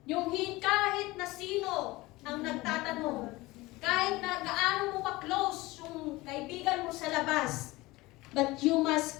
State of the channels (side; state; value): right; quieter; 20.5 dB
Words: Yung kahit na sino ang nagtatanong, kahit na gaano mo ka-close yung kaibigan mo sa labas, but you